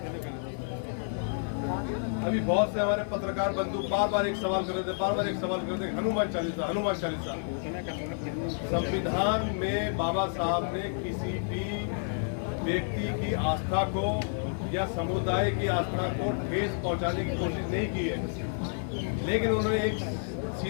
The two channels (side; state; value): right; silent; 56 dB below the other